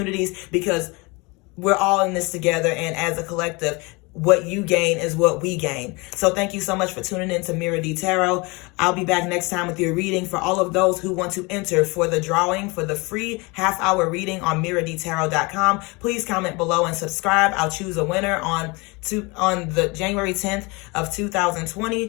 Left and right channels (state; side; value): quieter; right; 26.7 dB